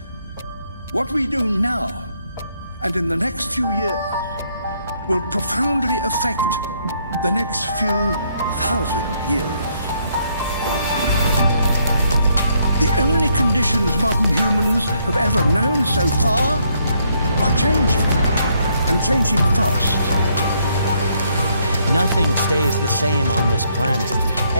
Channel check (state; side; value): inverted; both; correlation -0.72